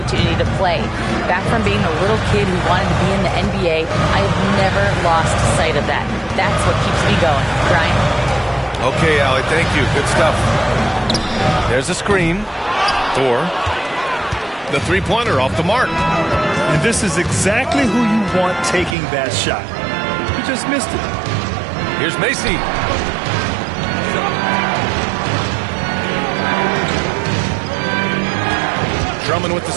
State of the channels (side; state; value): left; drops out; at 18.9 s